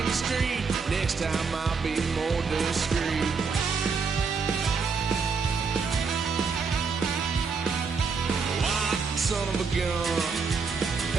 the street. Next time I'll be more discreet. Son of a gun,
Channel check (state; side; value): quieter; left; 5.1 dB